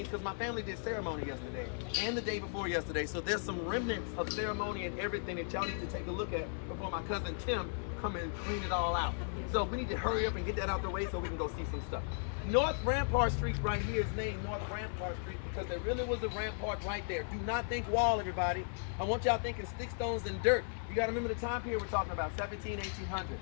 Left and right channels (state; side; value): silent; right; 54 dB below the other